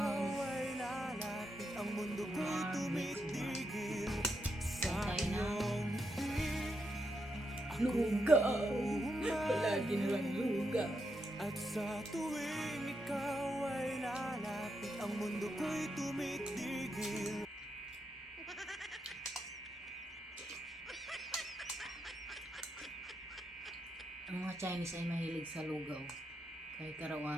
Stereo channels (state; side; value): normal; both; correlation 0.82